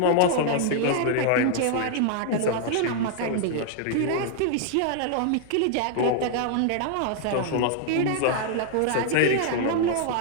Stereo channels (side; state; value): both; different; correlation -0.01